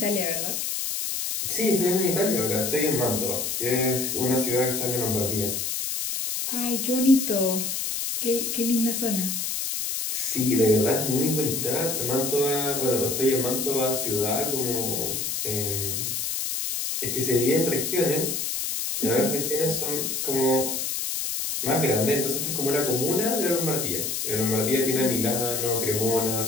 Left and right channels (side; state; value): left; noise; hiss, 2 dB below the sound